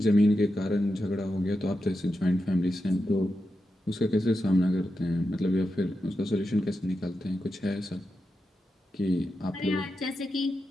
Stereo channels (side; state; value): both; normal; correlation 0.88